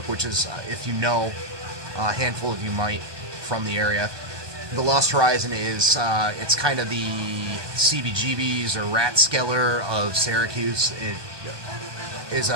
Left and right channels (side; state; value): left; late; 1.2 ms